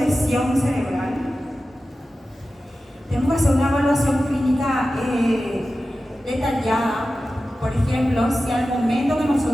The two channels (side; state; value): both; normal; correlation 0.94